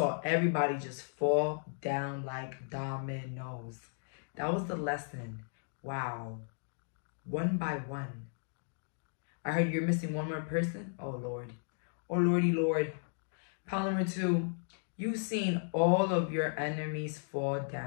everybody just fall down like dominoes. That was the lesson. Wow. One by one. I heard you're missing one more person. Oh, Lord. Oh, Lordy, Lord. Pile number 2. You've seen all of your enemies fall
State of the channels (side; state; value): right; silent; digital silence